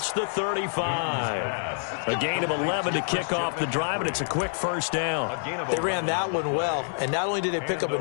the 35. A gain of 11 to kick off the drive, and it's a quick 1st down. They ran that one well, and not only did they pick up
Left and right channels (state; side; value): silent; right; 60 dB below the other